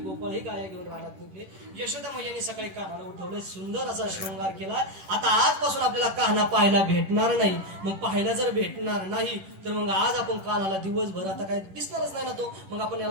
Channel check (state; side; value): late; left; 10 ms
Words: ही गाया घेऊन रानात निघले. यशोदा मैयाने सकाळी कान्हाला उठवलं, सुंदर असा शृंगार केला. आता आजपासून आपल्याला कान्हा पाहायला भेटणार नाही. मग पाहायला जर भेटणार नाही तर मग आज आपण कान्हाला दिवसभर आता काय दिसणारच नाही ना तो, मग आपण